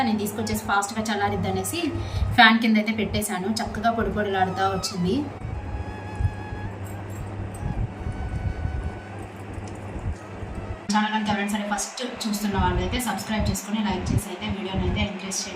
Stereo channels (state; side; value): identical; both; correlation 1.00